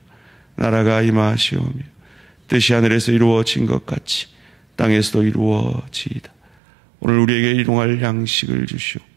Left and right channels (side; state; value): left; drops out; at 6.5 s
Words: 나라가 임하시오며 뜻이 하늘에서 이루어진 것 같이 땅에서도 이루어지이다. 오늘 우리에게 일용할 양식을